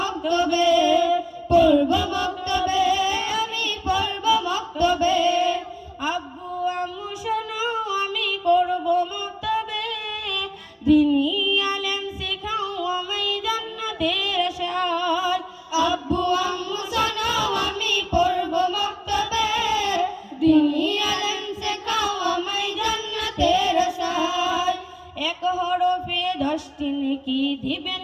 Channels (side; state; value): both; identical; correlation 1.00